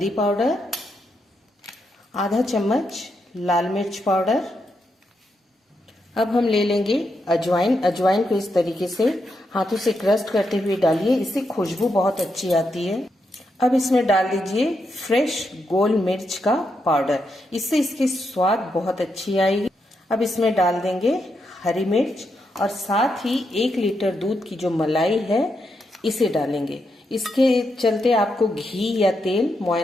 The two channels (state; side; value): normal; both; correlation 0.82